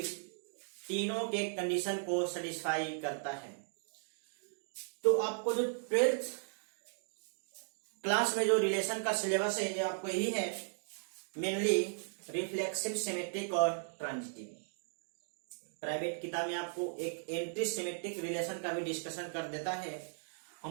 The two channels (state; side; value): silent; left; digital silence